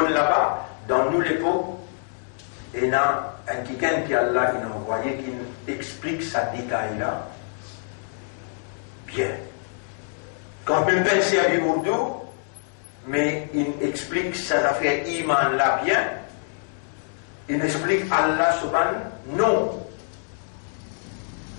là-bas, dans nous l'époque, il y a un quelqu'un qui Allah qui nous envoyé, qui nous explique sa détail là, bien. Quand même penser à Bimourdo, mais il explique ses affaires iman là bien, il explique Allah subhanahu non.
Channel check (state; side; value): silent; right; 62 dB below the other